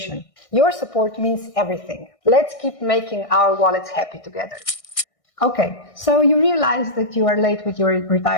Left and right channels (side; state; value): right; late; 1.6 ms